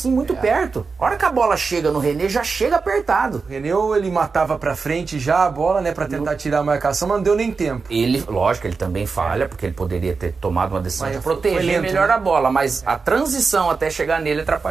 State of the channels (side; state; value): left; quieter; 4.7 dB